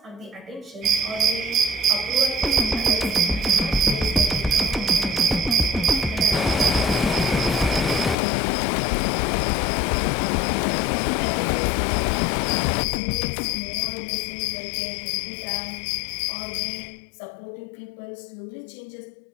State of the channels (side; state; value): right; drops out; at 8.2 s